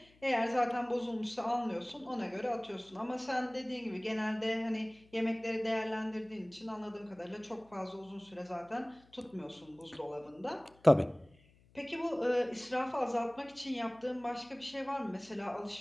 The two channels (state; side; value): noise; left; hum, 29 dB below the sound